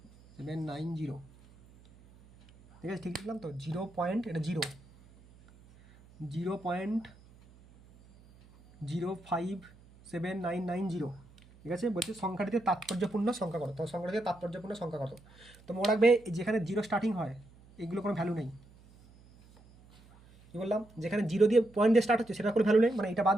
790, ঠিক আছে? ঠিক লিখলাম তো? এটা 0.057990, ঠিক আছে? বলছে সংখ্যাটিতে তাৎপর্যপূর্ণ সংখ্যা কত? তো সংখ্যাটিতে তাৎপর্যপূর্ণ সংখ্যা কত? তো মনে রাখবে যেখানে 0 স্টার্টিং হয় এগুলো কোনো ভ্যালু নেই। কী বললাম? যেখানে 0 দিয়ে পয়েন্ট দিয়ে স্টার্ট হচ্ছে সেটা কোনো ভ্যালু নেই, মানে এটা বাদ,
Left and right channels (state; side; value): noise; right; hum, 25 dB below the sound